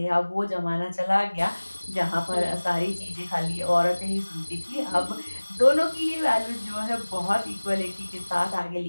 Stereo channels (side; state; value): both; inverted; correlation -1.00